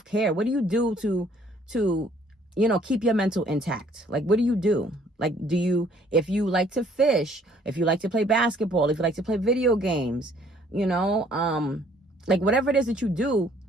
What do you do to, you know, keep your mental intact? Like, what do you do? Like, if you like to fish, if you like to play basketball, if you like to play video games, you know, like, whatever it is that you do,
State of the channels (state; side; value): normal; both; correlation 0.60